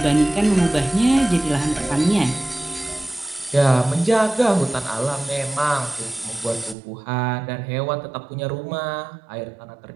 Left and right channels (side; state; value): left; drops out; at 6.8 s